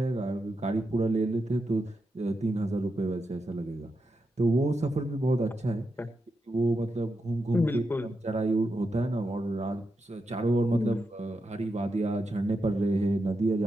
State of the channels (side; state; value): both; normal; correlation 0.86